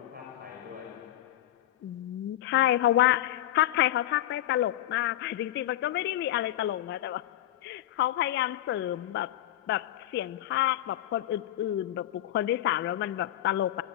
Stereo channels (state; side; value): quieter; right; 13.4 dB